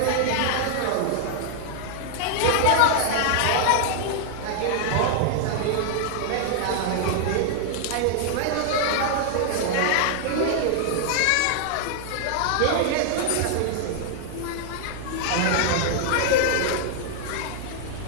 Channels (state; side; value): different; both; correlation 0.00